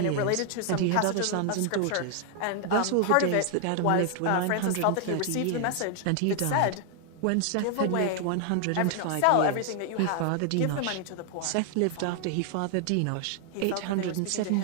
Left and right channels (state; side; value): different; both; correlation 0.00